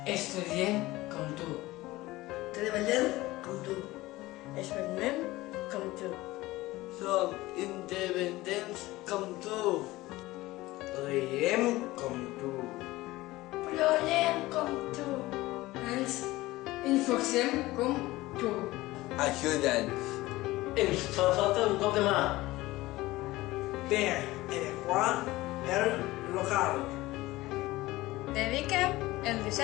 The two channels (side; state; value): right; quieter; 18.7 dB